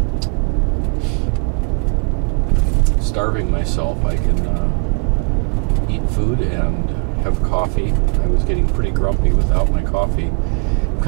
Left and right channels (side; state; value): left; quieter; 33.4 dB